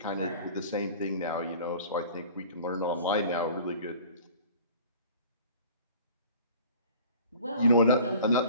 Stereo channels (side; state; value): both; inverted; correlation -0.45